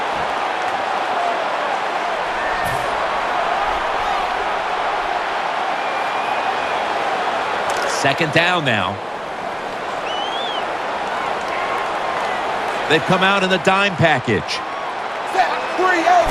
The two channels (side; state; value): both; identical; correlation 1.00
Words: Second down now. They've come out in the dime package.